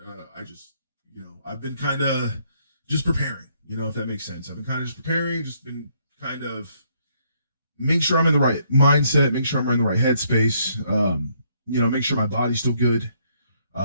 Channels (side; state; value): both; inverted; correlation -0.70